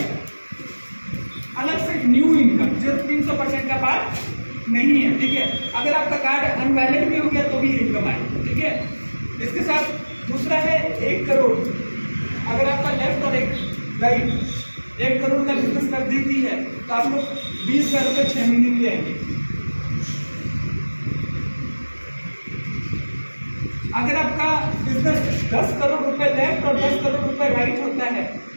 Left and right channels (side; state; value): both; inverted; correlation -1.00